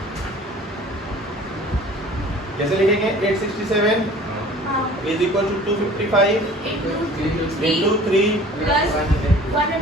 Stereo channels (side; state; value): both; normal; correlation 0.47